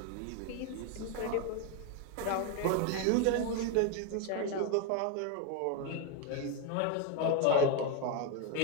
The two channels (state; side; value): different; both; correlation 0.02